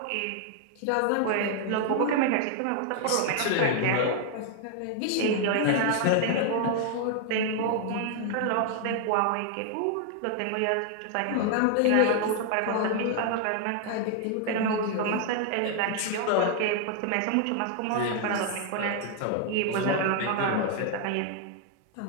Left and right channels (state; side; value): different; both; correlation 0.00